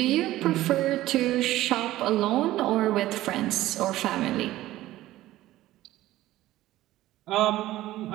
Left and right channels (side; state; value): left; quieter; 15.6 dB